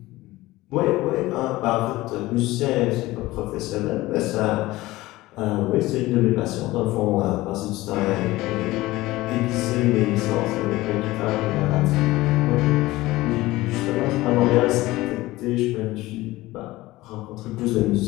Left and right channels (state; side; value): quieter; right; 18.5 dB